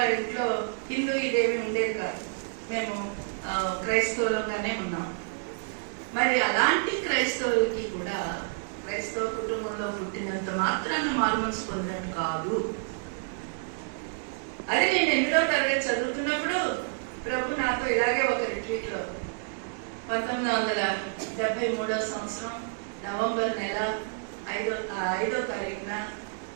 ఇంట్లో హిందూ ఇదేమి ఉండేది కాదు. మేము క్రైస్తవులుగానే ఉన్నాం. మరి అలాంటి క్రైస్తవులకి కూడా క్రైస్తవ కుటుంబంలో పుట్టినంత మాత్రాన్ని మారు మనసు పొందినట్టు కాదు. అది నేను 8వ తరగతి చదువుతున్నప్పుడు ప్రభు నాతో ఇలాగే ఒక రిట్రీట్లో 1973వ సంవత్సరం నవంబర్ నెల 5వ తారీఖున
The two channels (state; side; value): silent; left; 59 dB below the other